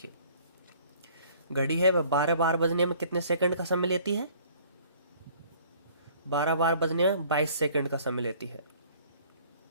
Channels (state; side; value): inverted; both; correlation -0.55